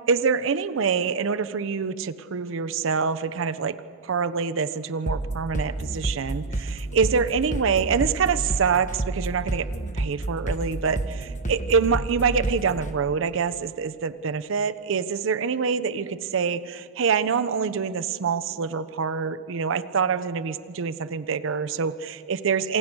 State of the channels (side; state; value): left; quieter; 5.0 dB